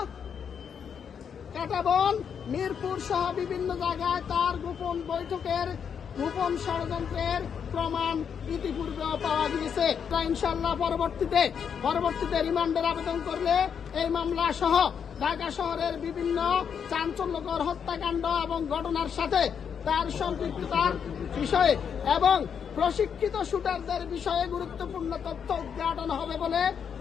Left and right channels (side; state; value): right; quieter; 7.3 dB